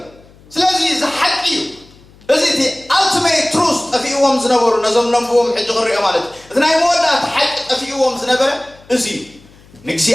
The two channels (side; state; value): left; noise; hum, 26 dB below the sound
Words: ስለዚ ዝሓቂ እዩ እዚ እቲ ኣልቲሜት ትሩዝ ጠፊእዎም ዝነበሩ ነዞም ነንብቦም ሕጂ ክሪኦ ማለት እዩ እቲ ናይ መወዳእቲ ሓቂ ጠፊእዎም ዝነበረ እዚ እዩ